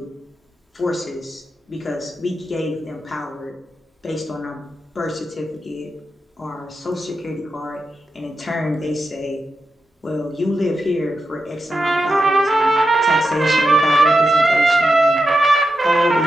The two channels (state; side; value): normal; both; correlation 0.88